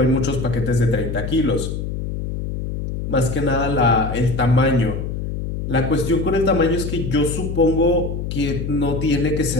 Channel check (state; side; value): noise; left; hum, 4 dB below the sound